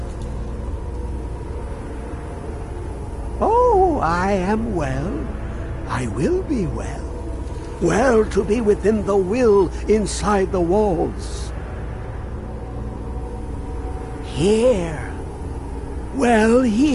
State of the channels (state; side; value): identical; both; correlation 1.00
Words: Oh, I am well. I will be well. Well to be within the will inside the walls. Here. Well,